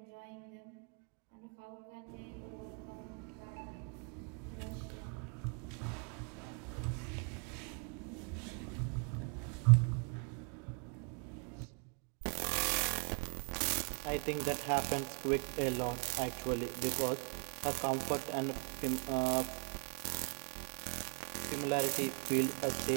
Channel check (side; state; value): left; quieter; 39.8 dB